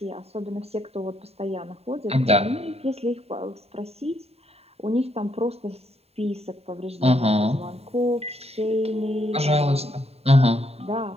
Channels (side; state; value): left; late; 0.30 ms